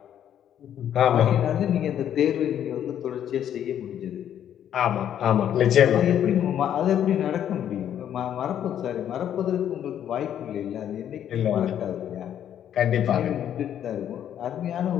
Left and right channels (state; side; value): quieter; right; 10.1 dB